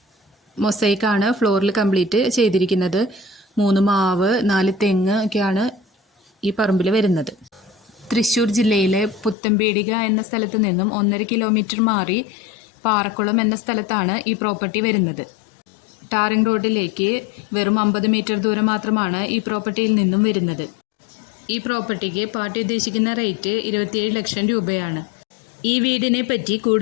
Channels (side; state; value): right; drops out; at 9.3 s